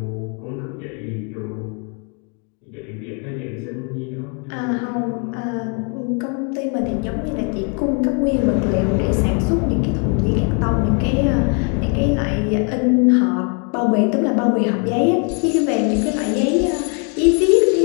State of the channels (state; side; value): quieter; right; 37.2 dB